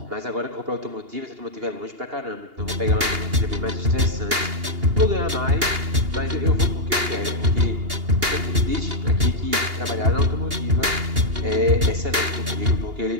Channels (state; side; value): late; left; 2.8 ms